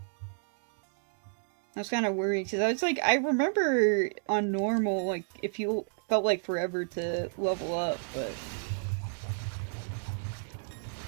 I was kind of worried, because I was like, I remember on normal, like, if you felt like forever to level up, but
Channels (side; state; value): left; silent; digital silence